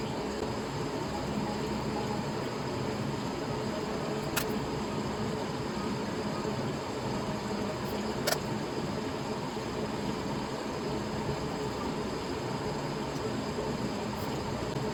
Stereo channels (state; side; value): identical; both; correlation 1.00